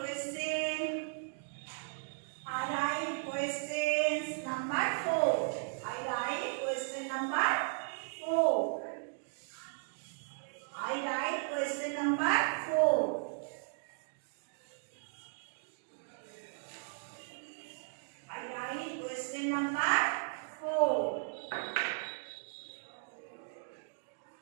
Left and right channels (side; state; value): left; silent; digital silence